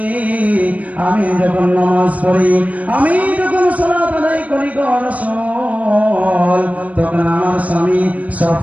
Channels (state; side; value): late; left; 0.070 ms